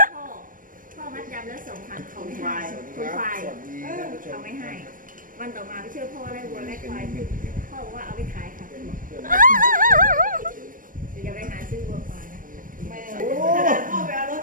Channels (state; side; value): late; left; 0.39 ms